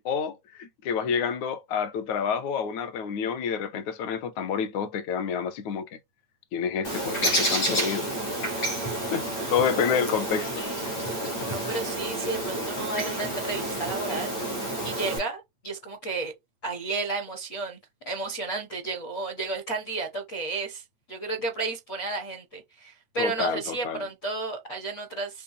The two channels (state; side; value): late; right; 8.8 ms